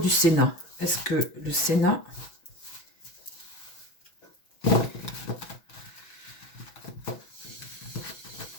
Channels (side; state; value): right; late; 6.1 ms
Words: Sénat? Est-ce que le Sénat...